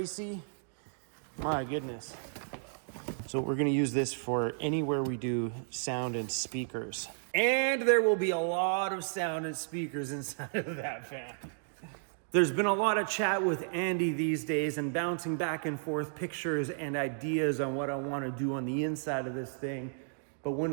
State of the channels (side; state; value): left; silent; digital silence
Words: my goodness. So we're gonna use this for anywhere we do sound and speakers. And there will be a lot of sound and speakers inside of that van. There's been a lot of chat with Andy these days and bouncing back and forth pictures and ideas on what I wanna do on the inside of this thing. But one